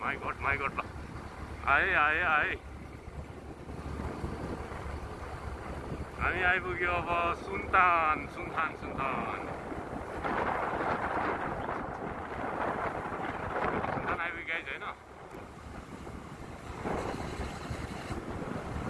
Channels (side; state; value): both; identical; correlation 1.00